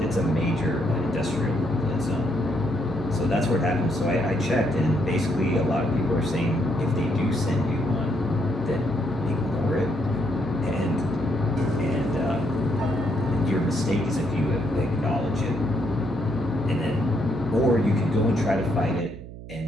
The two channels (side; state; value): right; noise; hum, 13 dB below the sound